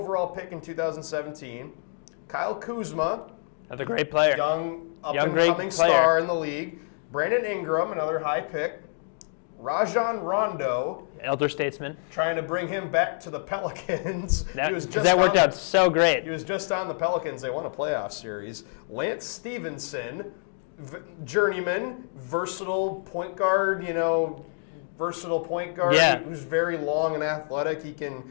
pick in 2017. Kyle Kuzma, another great player, young up-and-coming star in the league. Brandon Ingram, another high pick. Rajon Rondo, elder statesman, trying to bring him back to the Pelicans. That worked out so great. He was just on the Pelicans. They won a playoff series. Lance Stevenson, journeyman, versatile point guard, who's very long and athletic.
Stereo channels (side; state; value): right; silent; 60 dB below the other